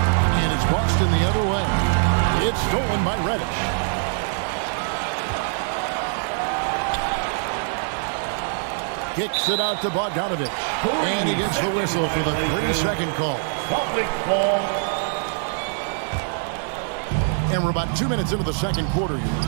it's Boston the other way. It's stolen by Reddish. Kicks it out to Bogdanovich. And he gets the whistle for the 3-second call. Public ball. And we're about 2 minutes into the second quarter here.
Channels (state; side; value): silent; left; 63 dB below the other